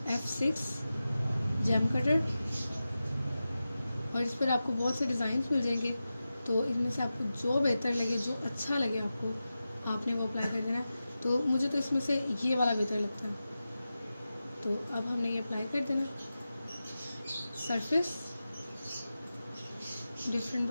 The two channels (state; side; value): inverted; both; correlation -0.93